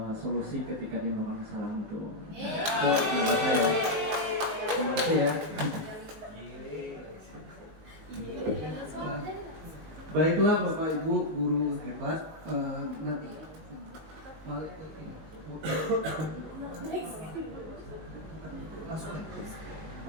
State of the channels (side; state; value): left; late; 19 ms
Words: solusi ketika dia melakukan kesalahan itu. Itu menurut saya. Terima kasih ya. Baiklah Bapak Ibu guru hebat, nanti balik ke ini. Langsung ya.